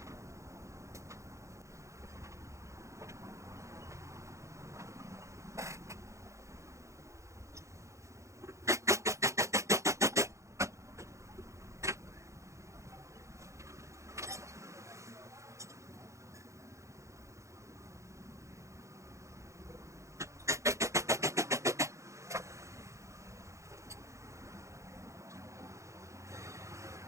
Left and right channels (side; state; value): left; late; 0.15 ms